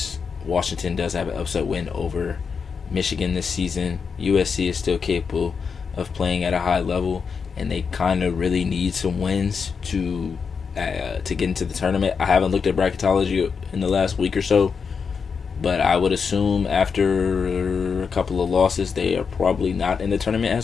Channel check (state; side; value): quieter; right; 5.8 dB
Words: Washington does have an upset win over Michigan this season. USC is still capable of playing at a high level, and they kind of really need some wins to get into the tournament. I haven't looked at bracketology in the last week or so, but I would assume after a couple of losses, they are probably not in the tournament